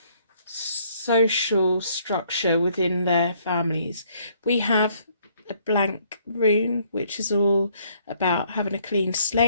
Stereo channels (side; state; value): both; inverted; correlation -0.65